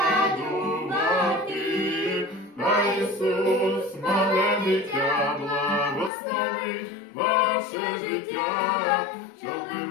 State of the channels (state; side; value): drops out; right; at 6.1 s